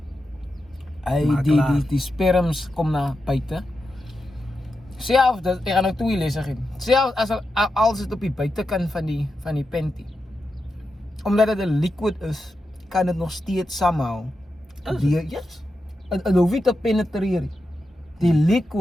die sperms kom na buite. Self dat ek gaan nou 2 lesse gee. Self as dit op die buitekant van die panty. Omdat dit 'n liquid is, kan dit nog steeds somehow yes. En hoef nie te penetreer. Die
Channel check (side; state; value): both; normal; correlation 0.88